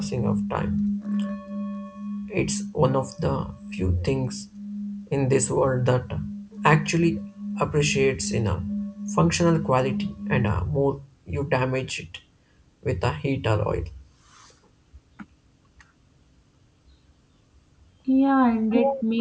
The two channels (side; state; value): both; identical; correlation 1.00